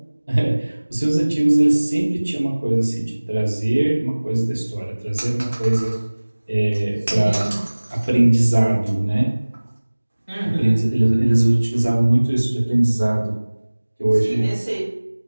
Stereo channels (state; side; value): inverted; both; correlation -1.00